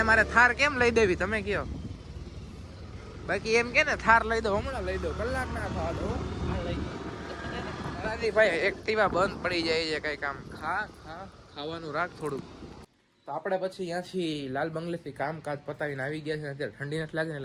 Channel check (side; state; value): both; identical; correlation 1.00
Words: મારે થાર કેમ લઈ દેવી તમે કયો? બાકી એમ કે ને થાર લઈ દો, હમણાં લઈ દો, કલાક ના થવા દો. ભાઈ એક્ટિવા બંધ પડી જાય છે. કઈ કામ ખાવાનું રાખ થોડું. તો આપણે પછી ત્યાંથી લાલ બંગલેથી કામકાજ પતાવીને આવી ગયા છે. અત્યારે ઠંડી નથી લાગે ને,